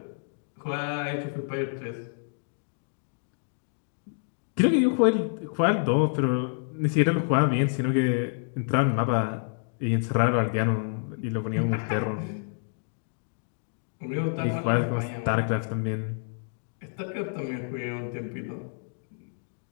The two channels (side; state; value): right; silent; digital silence